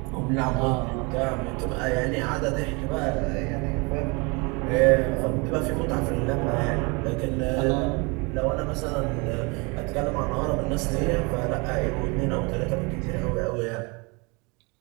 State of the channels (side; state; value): left; quieter; 29.1 dB